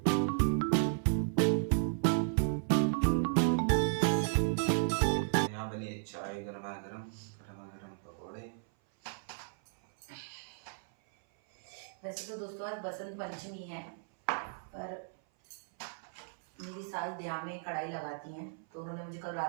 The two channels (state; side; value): silent; left; 55 dB below the other